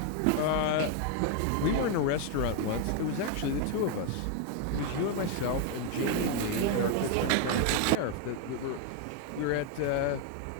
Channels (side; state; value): both; different; correlation 0.01